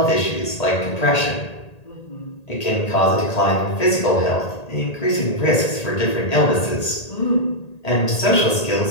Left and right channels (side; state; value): right; late; 1.8 ms